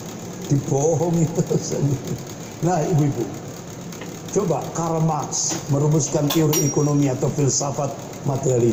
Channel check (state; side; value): identical; both; correlation 1.00